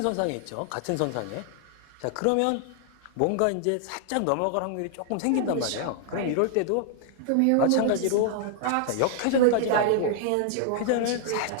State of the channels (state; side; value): different; both; correlation 0.00